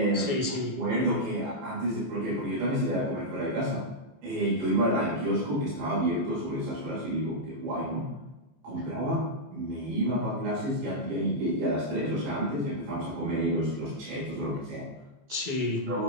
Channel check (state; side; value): late; left; 14 ms